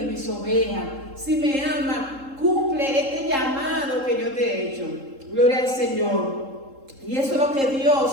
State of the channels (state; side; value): late; left; 3.7 ms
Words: mis ovejas. Si me amas, cumple este llamado que yo te he hecho. Gloria al Señor. Y eso es lo que